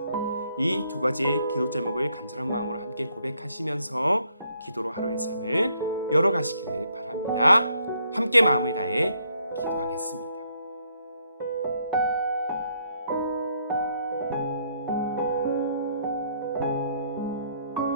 이 두 가지의 기도 제목을 간절한 마음으로 함께 고백하시면서 기도로 하루의 삶을 열어가시기를 바랍니다. 함께 마음을 다해 기도하겠습니다.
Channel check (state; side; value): inverted; both; correlation -0.71